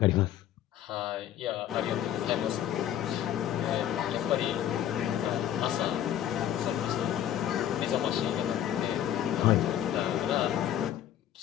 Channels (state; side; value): quieter; right; 11.0 dB